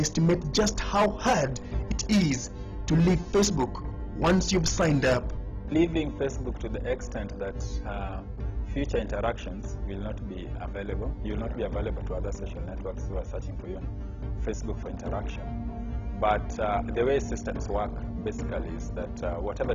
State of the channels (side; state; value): both; identical; correlation 1.00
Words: just how hard it is to leave Facebook once you've signed up. Leaving Facebook to the extent that future interactions will not be available. You will not be available to other social networks who are searching for you on Facebook for interaction. But the way systems work basically is that